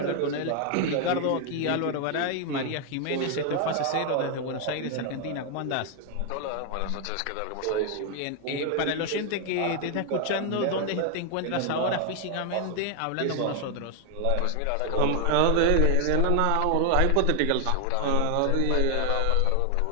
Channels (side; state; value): both; different; correlation 0.00